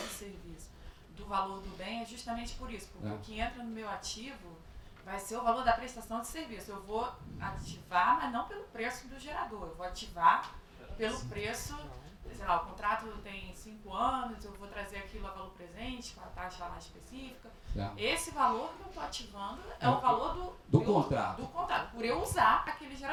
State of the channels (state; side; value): identical; both; correlation 1.00